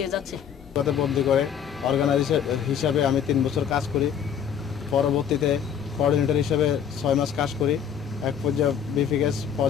যাচ্ছি। ভালুকাতে বদলি করে অর্গানাইজার হিসাবে আমি 3 বছর কাজ করি। পরবর্তীতে কোঅর্ডিনেটর হিসেবে 6 মাস কাজ করি। এক পর্যায়ে বিপিকেস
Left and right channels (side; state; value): right; quieter; 8.2 dB